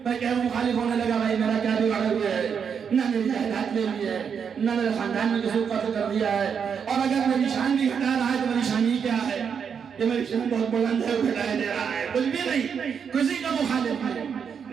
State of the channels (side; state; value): left; quieter; 6.9 dB